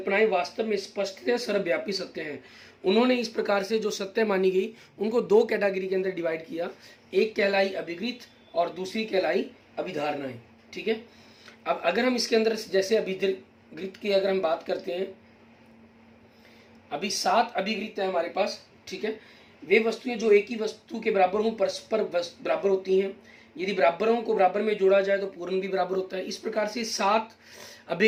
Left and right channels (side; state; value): both; identical; correlation 1.00